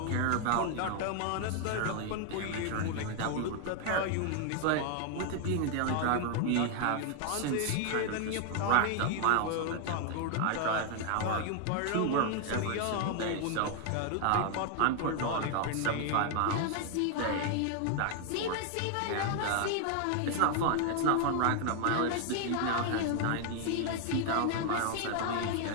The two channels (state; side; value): different; both; correlation 0.00